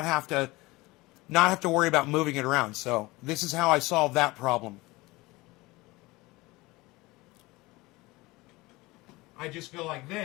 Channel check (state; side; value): quieter; right; 21.6 dB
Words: have to worry about moving it around. So this is how I solve that problem. I just go like